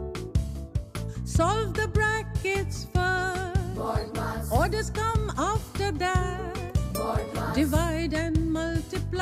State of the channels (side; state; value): both; identical; correlation 1.00